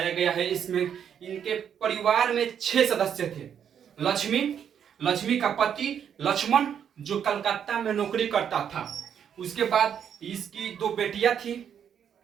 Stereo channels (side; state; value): left; quieter; 8.4 dB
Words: गया है। इसमें इनके परिवार में 6 सदस्य थे। लक्ष्मी, लक्ष्मी का पति लक्ष्मण जो कलकत्ता में नौकरी करता था। उसके बाद इसकी दो बेटियां